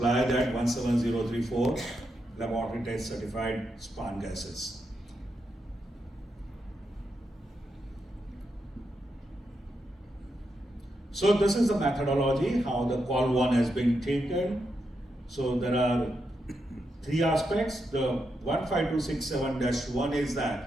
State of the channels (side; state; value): both; normal; correlation 0.84